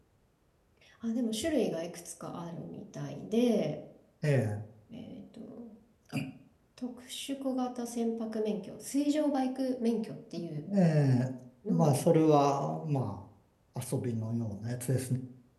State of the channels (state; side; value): identical; both; correlation 1.00